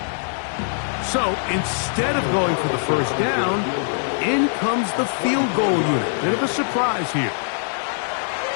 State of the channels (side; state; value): right; silent; 64 dB below the other